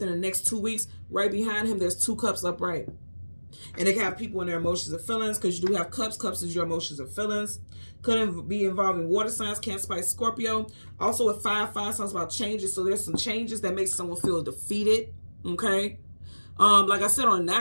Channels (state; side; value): inverted; both; correlation -1.00